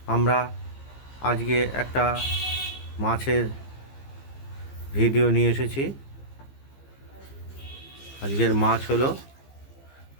আমরা আজকে একটা মাছের ভিডিও নিয়ে এসেছি। আজকের মাছ হলো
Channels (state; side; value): late; right; 15 ms